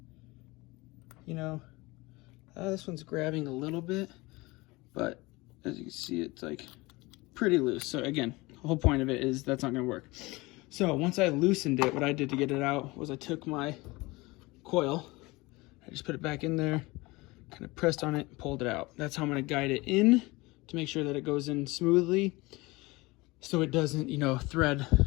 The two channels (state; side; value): quieter; right; 22.7 dB